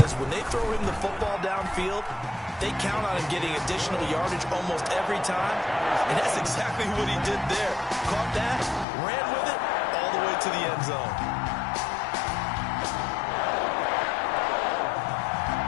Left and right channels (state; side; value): drops out; right; at 8.8 s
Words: when they throw him the football downfield, they count on him getting additional yardage almost every time. And that's exactly what he did there. Caught that, ran with it, all the way to the end zone.